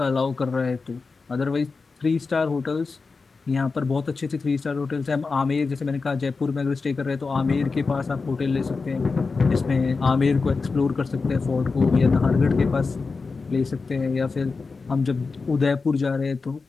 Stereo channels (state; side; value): quieter; right; 4.4 dB